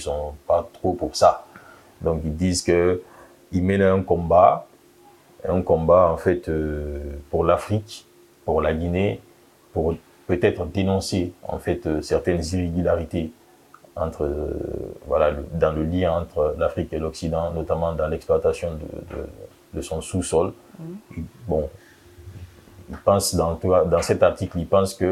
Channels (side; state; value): both; identical; correlation 1.00